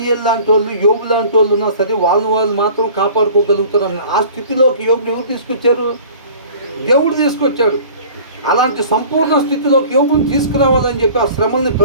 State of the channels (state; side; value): inverted; both; correlation -0.46